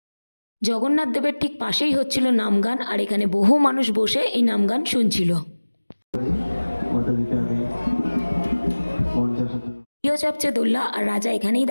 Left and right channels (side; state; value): both; inverted; correlation -1.00